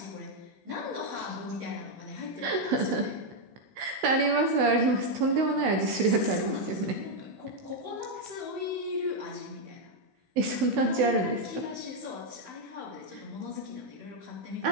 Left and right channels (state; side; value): late; left; 16 ms